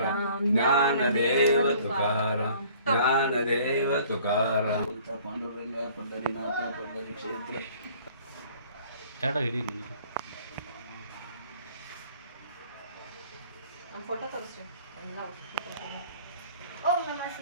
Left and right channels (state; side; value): inverted; both; correlation -0.54